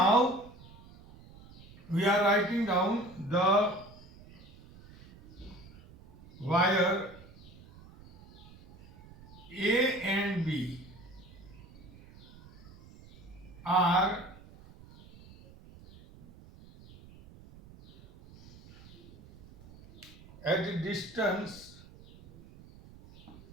we are writing down the wire A and B are at a distance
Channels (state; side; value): noise; right; rumble, 21 dB below the sound